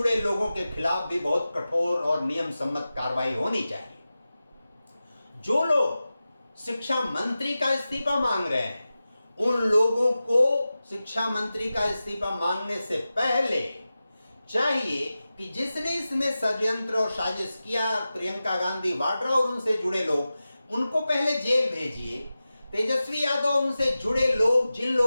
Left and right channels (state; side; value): inverted; both; correlation -0.94